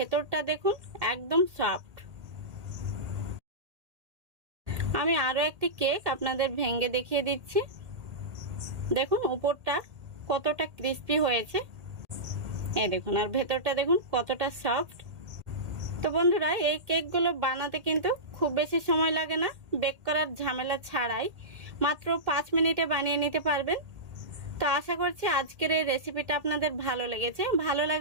দেখুন একদম সফট। আমি আরও একটি কেক আপনাদের ভেঙে দেখিয়ে দিচ্ছি। দেখুন উপরটা কতটা ক্রিস্পি হয়েছে, এই দেখুন, আর ভেতরটা দেখুন কতটা সফট। তো বন্ধুরা, এই কেকগুলো বানাতে কিন্তু খুব বেশি সময় লাগে না, বেক করার ঝামেলা ছাড়াই মাত্র 5 মিনিটে বানিয়ে নিতে পারবেন। তো আশা করছি আজকের এই রেসিপিটা আপনাদের ভালো লেগেছে। ভালো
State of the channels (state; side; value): late; left; 1.8 ms